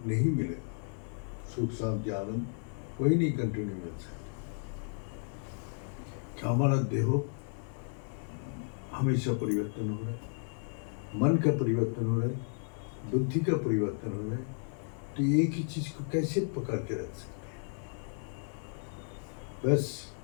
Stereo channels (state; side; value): silent; right; 55 dB below the other